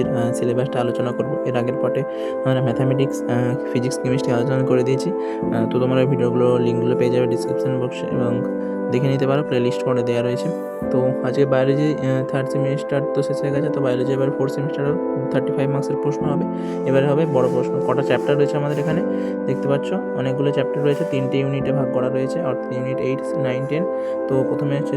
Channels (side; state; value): both; identical; correlation 1.00